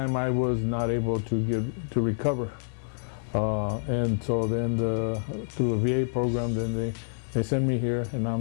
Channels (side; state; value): right; silent; digital silence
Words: I was not able to recover. And so then through the VA program, then they sent me here, and I'm